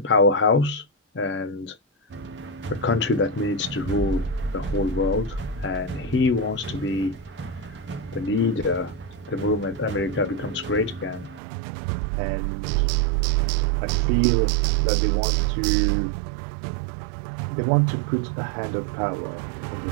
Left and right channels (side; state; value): left; drops out; at 11.4 s